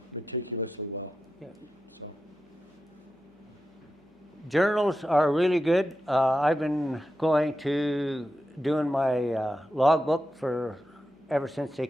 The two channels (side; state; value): both; normal; correlation 0.90